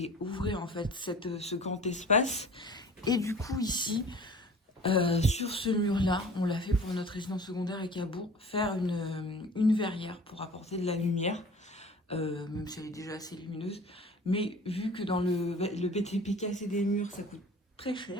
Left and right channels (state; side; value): normal; both; correlation 0.44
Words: en fait ce grand espace. Et du coup ici, sur ce mur-là, on l'a fait pour notre résidence secondaire à Cabourg, faire une verrière pour apporter de la lumière, même si elle est déjà assez lumineuse. Mais vu que dans le BTP, casser des murs, ça coûte très